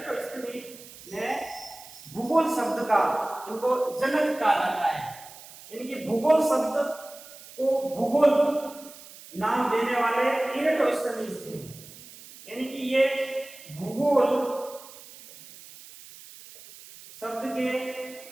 ने भूगोल शब्द का, इनको जनक कहा जाता है। यानी कि भूगोल शब्द को भूगोल नाम देने वाले इरेटोस्थनीज थे। यानी कि ये भूगोल शब्द के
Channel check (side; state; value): right; noise; hiss, 18 dB below the sound